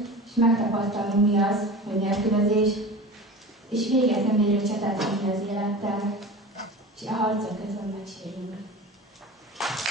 és megtapasztalnunk, mi az, hogy nélkülözés, és véget nem érő csatát vinni az élettel, és a harcok közben megsérülünk.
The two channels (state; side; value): normal; both; correlation 0.34